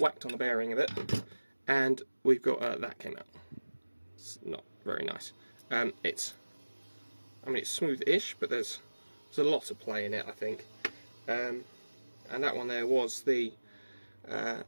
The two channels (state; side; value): inverted; both; correlation -1.00